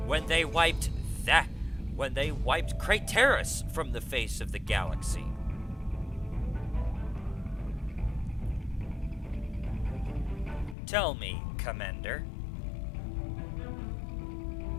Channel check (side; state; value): right; drops out; at 10.8 s